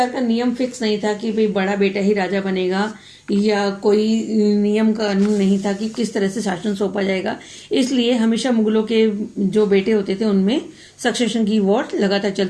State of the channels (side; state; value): both; identical; correlation 1.00